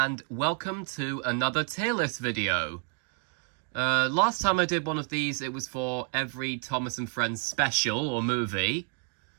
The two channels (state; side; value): quieter; left; 39.2 dB